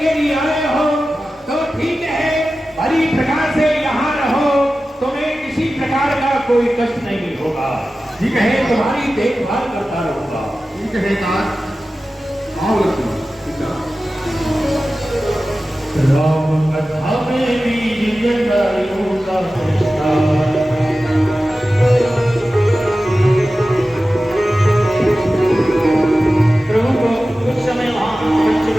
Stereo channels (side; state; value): both; normal; correlation 0.95